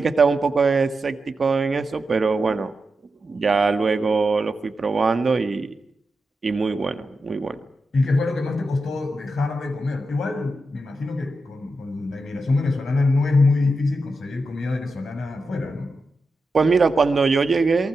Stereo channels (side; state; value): both; normal; correlation 0.88